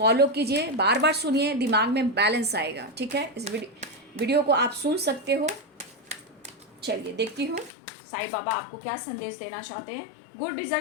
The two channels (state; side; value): drops out; right; at 7.7 s